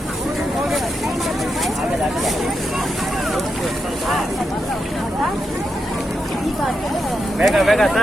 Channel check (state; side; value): normal; both; correlation 0.85